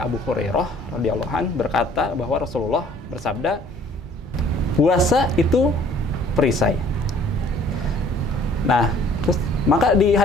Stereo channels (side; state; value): both; normal; correlation 0.56